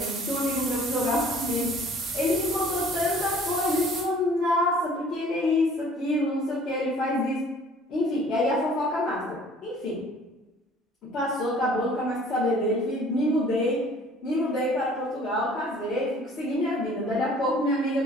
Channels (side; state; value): both; normal; correlation 0.52